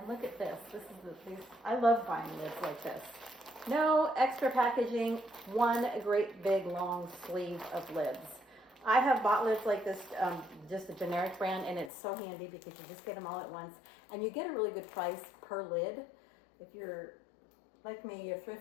look at this. This is I love buying lids like this. No extra packaging. One great big long sleeve of lids. I have bought lids like this, just a generic brand, and it's so handy because you just get them all at once. And you get a really good price per lid. If you're like me, you're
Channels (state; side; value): drops out; right; at 11.9 s